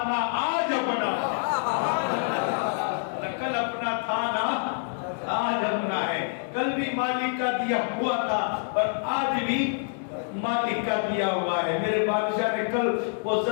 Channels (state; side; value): silent; right; 60 dB below the other